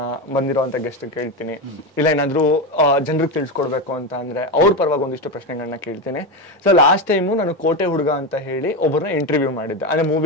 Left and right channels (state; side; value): normal; both; correlation 0.15